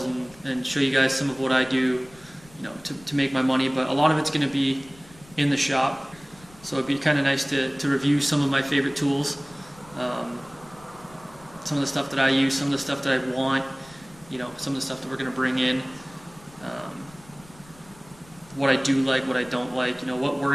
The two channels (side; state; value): left; noise; rumble, 24 dB below the sound